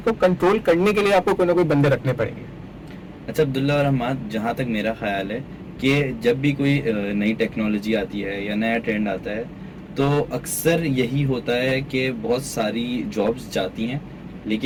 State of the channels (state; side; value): identical; both; correlation 1.00